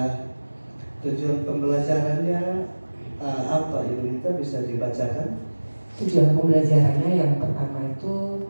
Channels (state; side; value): inverted; both; correlation -1.00